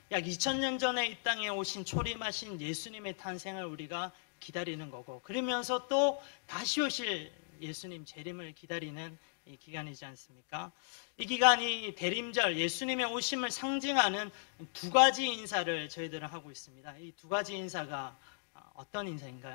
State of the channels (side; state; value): right; silent; digital silence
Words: 약 2000년 전에 이 땅에 오신 초림하신 예수님의 탄생을 우리가 기다리는 거고, 그러면서 또 다시 오실 예수님 재림을 기다리는 이 기간이지 않습니까? 이 기간이 대림절, 예수님의 오심을 상징하는 두 가지 인사를 저희들은 하고 있습니다. 이 두 가지 인사가 어떤